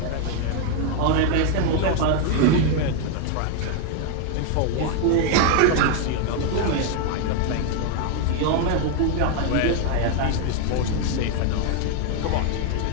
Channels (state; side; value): different; both; correlation 0.01